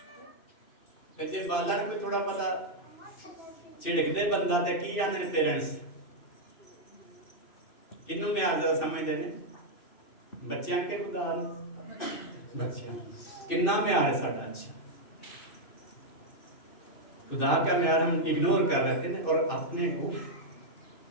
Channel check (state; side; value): late; right; 2.7 ms